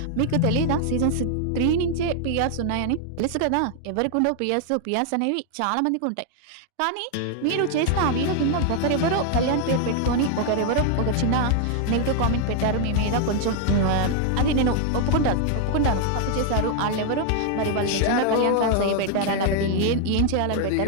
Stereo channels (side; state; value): both; different; correlation 0.00